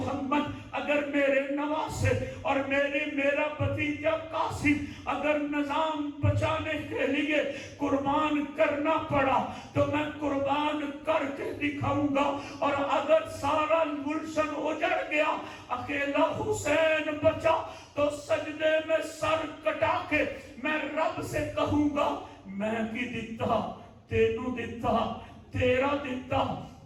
اگر میرے نواسے اور میرا بھتیجا قاسم اگر نظام بچانے کے لیے قربان کرنا پڑا تو میں قربان کر کے دکھاؤں گا، اور اگر سارا گلشن اجڑ گیا اکیلا حسین بچا تو سجدے میں سر کٹا کے میں رب سے کہوں گا میں کی دیتا تینوں دیتا تیرا دیتا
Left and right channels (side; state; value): both; identical; correlation 1.00